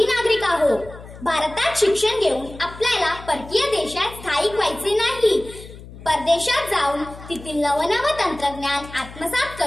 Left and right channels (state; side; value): noise; left; hum, 16 dB below the sound